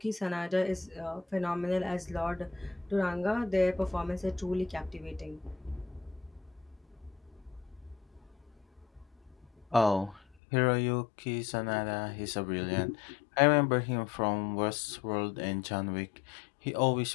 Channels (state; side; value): drops out; right; at 10.2 s